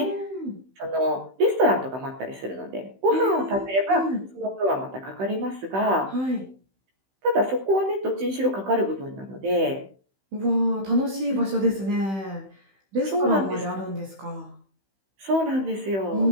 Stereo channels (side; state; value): left; late; 15 ms